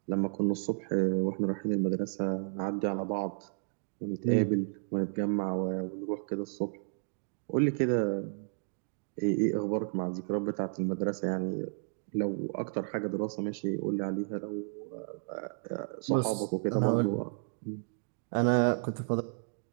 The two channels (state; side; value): silent; left; digital silence